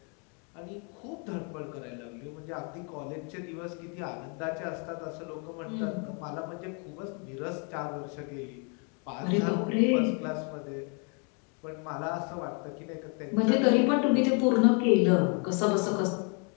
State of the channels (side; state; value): right; quieter; 37.2 dB